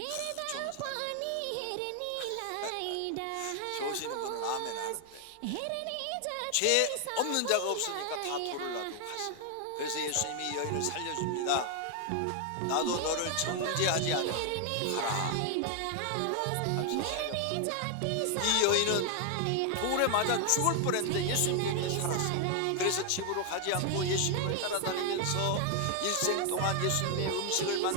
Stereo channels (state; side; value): different; both; correlation 0.00